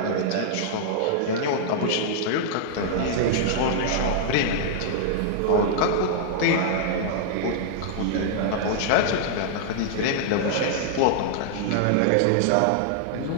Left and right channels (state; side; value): different; both; correlation -0.01